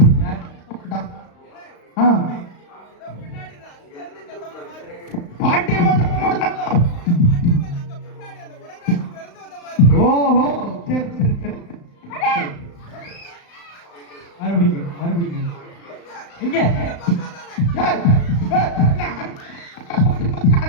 பாட்டியம்மா சத்தம் போடுறாங்க. ஓஹோ சரி சரி சரி. மறுபடியும் இங்க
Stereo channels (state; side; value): late; right; 35 ms